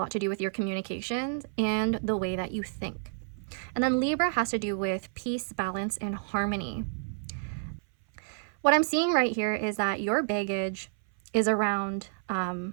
to do with your communications and the way that you think. And then Libra has to do with peace, balance, and harmony. What I'm seeing right here is that your baggage is around,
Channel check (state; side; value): silent; left; 58 dB below the other